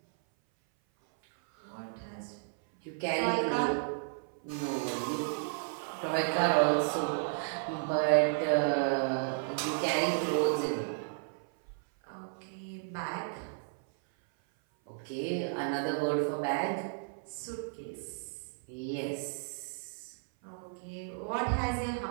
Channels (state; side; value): silent; left; 56 dB below the other